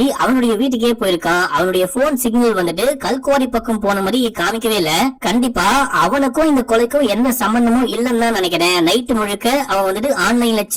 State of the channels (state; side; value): identical; both; correlation 1.00